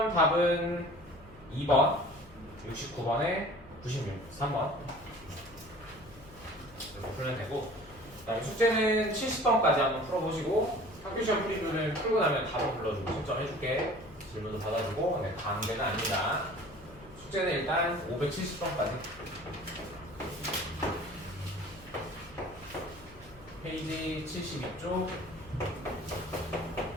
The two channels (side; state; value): left; noise; hum, 22 dB below the sound